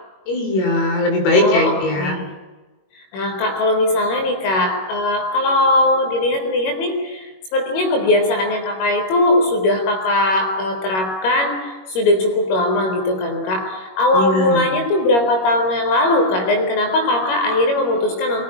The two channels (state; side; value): late; right; 21 ms